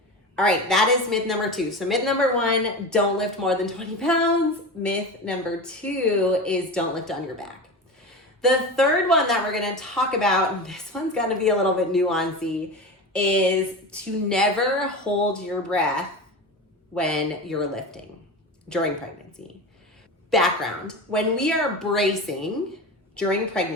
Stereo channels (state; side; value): normal; both; correlation 0.27